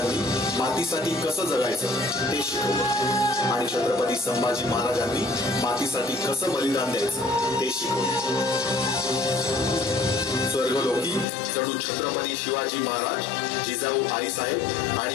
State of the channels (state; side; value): drops out; right; at 11.2 s